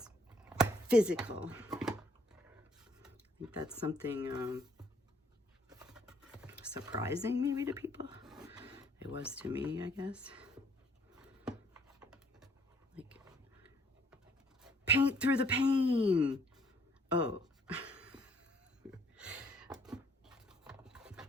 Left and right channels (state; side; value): normal; both; correlation 0.64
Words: physical. I think that's something surprising maybe to people. It was to me, I guess. Like, paint through the pain. Oh.